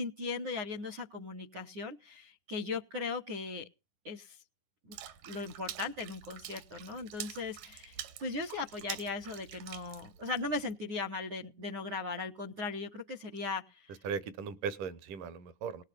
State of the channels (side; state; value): left; late; 10 ms